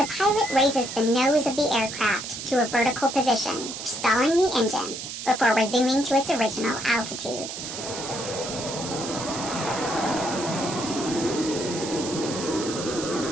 pilot raises the nose of the aircraft to a vertical position, stalling the engine before resuming to its original altitude.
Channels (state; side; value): noise; right; hiss, 8 dB below the sound